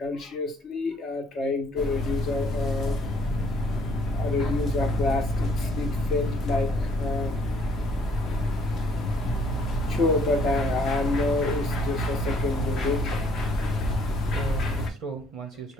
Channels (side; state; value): both; normal; correlation 0.63